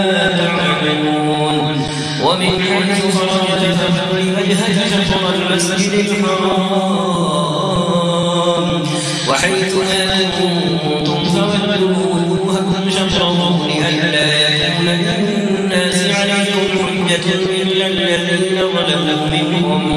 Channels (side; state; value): both; identical; correlation 1.00